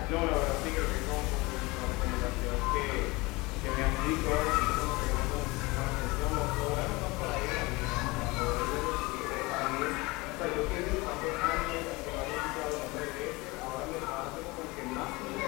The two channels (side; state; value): right; quieter; 23.5 dB